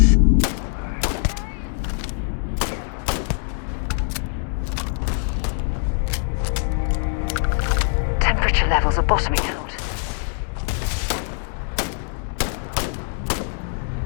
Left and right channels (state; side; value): silent; right; 64 dB below the other